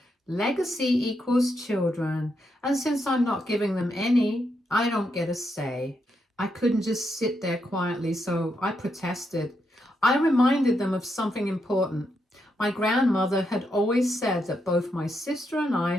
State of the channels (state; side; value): normal; both; correlation 0.81